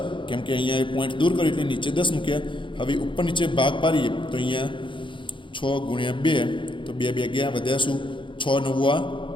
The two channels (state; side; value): late; right; 0.24 ms